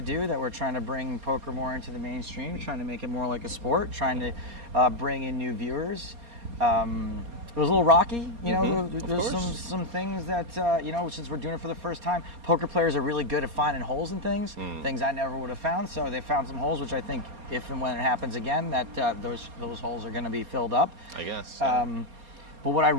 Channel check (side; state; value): left; late; 4.3 ms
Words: that we're trying to bring poker more into the mainstream, trying to make it more like a sport, trying to bring in new viewers. It was a little rocky, you know. There's some things that since we're doing it for the first time, poker players are really good at finding holes in things I never would have found. So they found some holes, which I think if and when it happens again, that those holes are going to be filled up. I guess. But what I